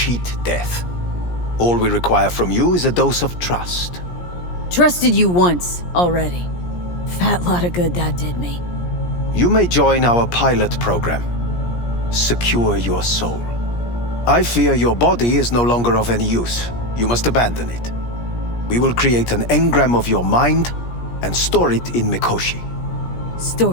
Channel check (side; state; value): right; late; 17 ms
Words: death. All we require from you is a dose of trust. Trusted you once already. Fat lot of good that did me. You may join our pilot program. Secure your soul. I fear your body is no longer of any use. You must abandon it. We will create an engram of your mind and store it in Mikoshi.